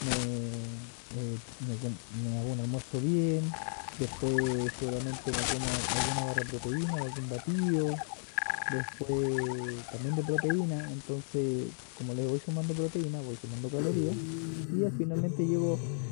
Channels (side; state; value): right; silent; 55 dB below the other